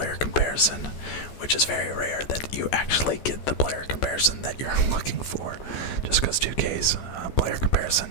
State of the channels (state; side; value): late; right; 14 ms